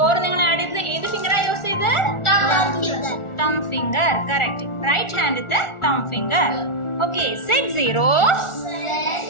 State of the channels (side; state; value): right; late; 1.4 ms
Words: നിങ്ങൾ ആഡ് ചെയ്തത് ഏത് ഫിംഗറാ യൂസ് ചെയ്ത്? തം ഫിംഗർ. കറക്റ്റ്. റൈറ്റ് ഹാൻഡ് തം finger. Okay. Set 0.